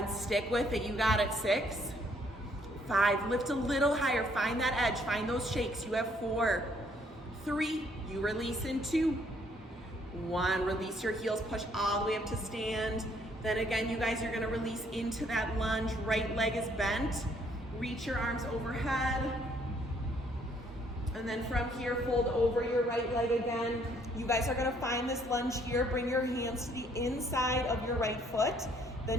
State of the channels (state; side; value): normal; both; correlation 0.66